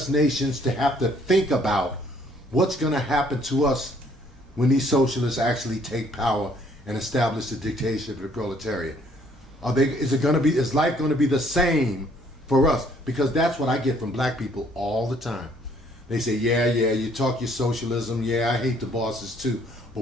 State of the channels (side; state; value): both; normal; correlation 0.63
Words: nations to have to think about what's going to happen to us when these socialists actually take power and establish the dictatorship of the proletariat. Is life going to be the same for us? Because that's what I get from black people all the time. They say, yeah, you talk your socialism, yeah, I hate the bosses too, but